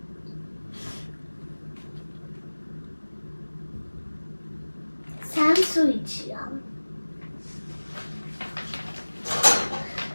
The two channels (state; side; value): inverted; both; correlation -1.00